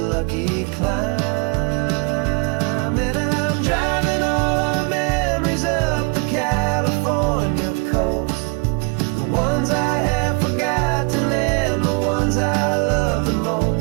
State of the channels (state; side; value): quieter; left; 31.6 dB